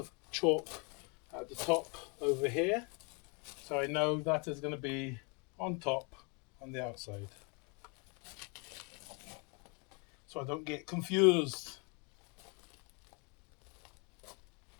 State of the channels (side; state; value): right; quieter; 33.1 dB